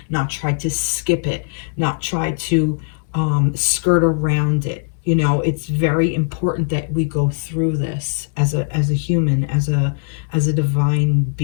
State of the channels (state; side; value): silent; right; digital silence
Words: not try to skip it, not try to skirt around it. You know, it's very important that we go through this as a human, as a divine